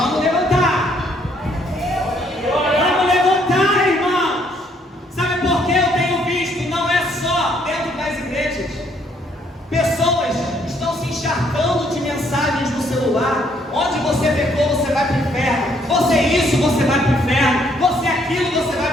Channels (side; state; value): both; normal; correlation 0.68